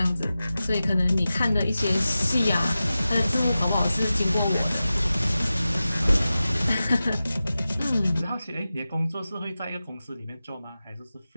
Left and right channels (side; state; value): both; inverted; correlation -0.94